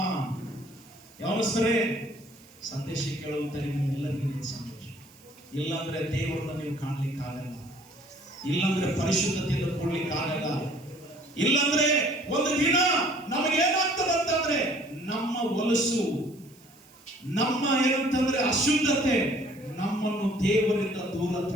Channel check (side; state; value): right; noise; hiss, 27 dB below the sound